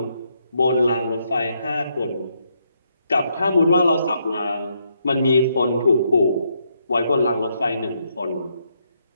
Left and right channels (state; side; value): inverted; both; correlation -0.77